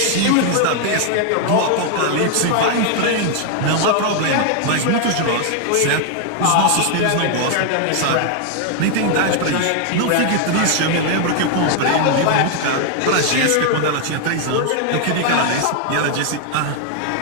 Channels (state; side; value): different; both; correlation 0.00